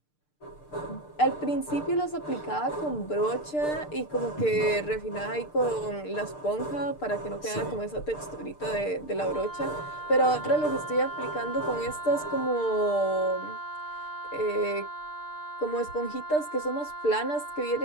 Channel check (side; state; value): right; late; 6.7 ms